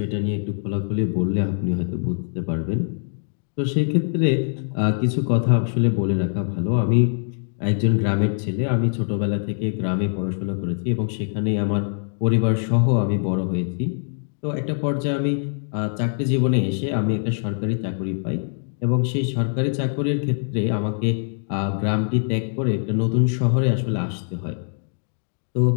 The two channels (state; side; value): silent; right; digital silence